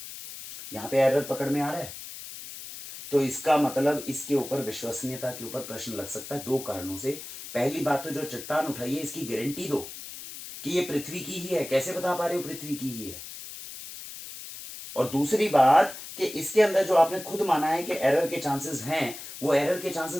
यहां पे एरर पकड़ में आ रहा है। तो इसका मतलब इसके ऊपर विश्वसनीयता के ऊपर प्रश्न लग सकता है दो कारणों से। पहली बात तो जो चट्टान उठाई है इसकी गारंटी दो कि ये पृथ्वी की ही है, कैसे बता पा रहे हो पृथ्वी की ही है। और दूसरी बात कि इसके अंदर जो आपने खुद माना है कि एरर के चांसेस हैं, वो एरर के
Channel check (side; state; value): left; noise; hiss, 12 dB below the sound